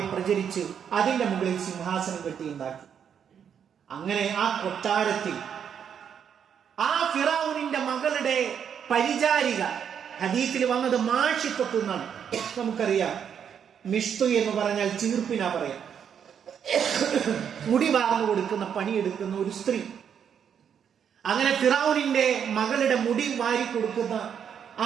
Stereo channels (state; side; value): quieter; left; 8.0 dB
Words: പ്രചരിച്ച് അതിന്റെ മുകളിൽ സിംഹാസനം കെട്ടിയുണ്ടാക്കി. അങ്ങനെ ആ കൊട്ടാരത്തിൽ ആ ഫിറഔനിന്റെ മകളുടെ പരിചാരിക, ഹദീസിൽ വന്നത് മാഷിഖത്ത് എന്നാണ്. നമുക്കറിയാം, മിഷ്തു എന്ന് പറഞ്ഞാൽ ചീർപ്പിനാ പറയാം. മുടി വാർന്നു കൊടുക്കുന്ന, പണിയെടുക്കുന്ന ഒരു സ്ത്രീ. അങ്ങനെ ഫിറഔനിന്റെ മകളുടെ മുടി വാരി കൊടുക്കുന്ന